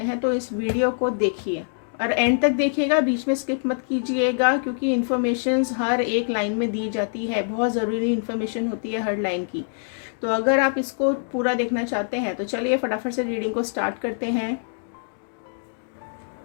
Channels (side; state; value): right; silent; digital silence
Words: हैं तो इस वीडियो को देखिए और एंड तक देखिएगा, बीच में स्किप मत कीजिएगा, क्योंकि इन्फॉर्मेशंस हर एक लाइन में दी जाती है, बहुत ज़रूरी इन्फॉर्मेशन होती है हर लाइन की। तो अगर आप इसको पूरा देखना चाहते हैं तो चलिए फटाफट से रीडिंग को स्टार्ट करते हैं।